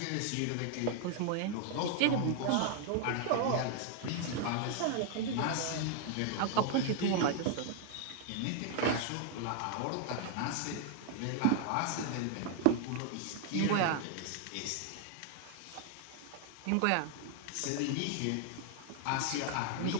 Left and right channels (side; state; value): both; different; correlation 0.00